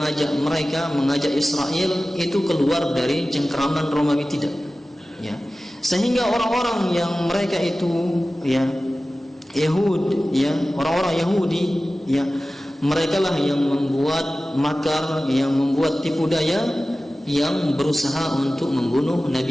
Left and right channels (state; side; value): normal; both; correlation 0.96